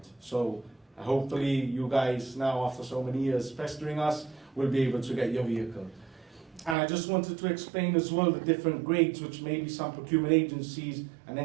So hopefully you guys now, after so many years pestering us, will be able to get your vehicle. And I just wanted to explain as well the different grades, which maybe some procurement agencies and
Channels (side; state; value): left; drops out; at 6.8 s